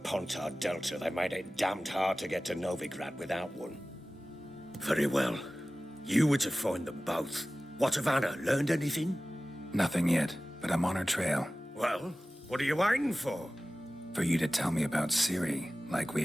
Delta, they made it damned hard to get to Novigrad without one. Very well. You were to find them both. What of Anna? Learned anything? Nothing yet, but I'm on her trail. Well, what are you waiting for? For you to tell me about Seri, like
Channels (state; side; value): normal; both; correlation 0.97